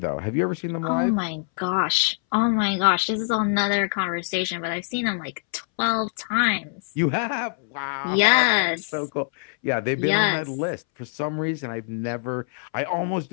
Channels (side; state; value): right; silent; 62 dB below the other